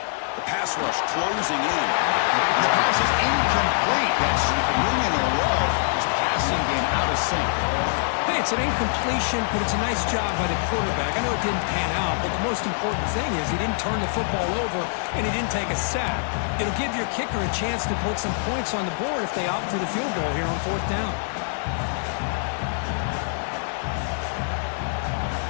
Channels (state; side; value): silent; right; 56 dB below the other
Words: The pass rush closing in. And the pass is incomplete. That's 3 in a row. His passing game out of sync. Hey, it's an incompletion, but it's a nice job by the quarterback. I know it didn't pan out, but the most important thing is he didn't turn the football over and he didn't take a sack. It'll give your kicker a chance to put some points on the board if they opt for the field goal here on 4th down.